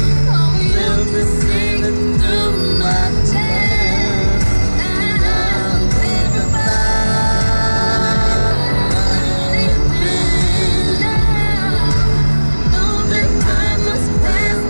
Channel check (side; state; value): both; inverted; correlation -1.00